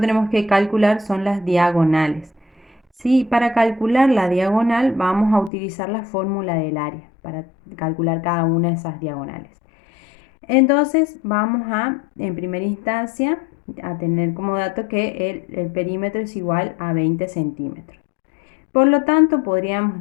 que calcular son las diagonales. Sí, para calcular la diagonal vamos a utilizar la fórmula del área para calcular cada una de esas diagonales. Entonces vamos en primera instancia, a tener como dato que el perímetro es igual a 20 centímetros. Por lo tanto, podríamos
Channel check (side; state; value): right; drops out; at 5.5 s